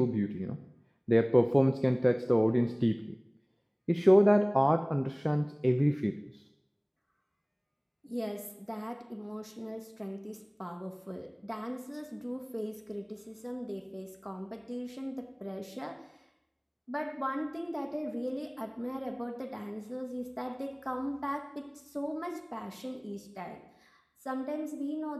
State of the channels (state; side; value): identical; both; correlation 1.00